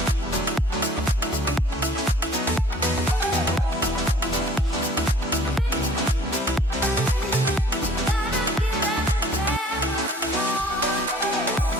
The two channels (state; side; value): normal; both; correlation 0.52